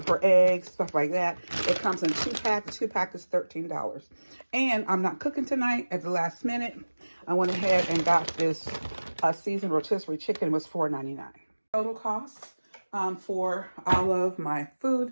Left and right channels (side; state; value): both; inverted; correlation -1.00